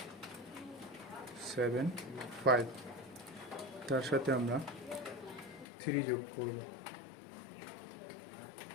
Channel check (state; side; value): drops out; right; at 5.7 s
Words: 7, 5, তার সাথে আমরা 3 যোগ করব।